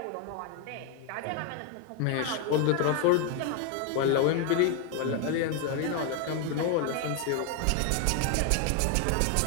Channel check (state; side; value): different; both; correlation 0.01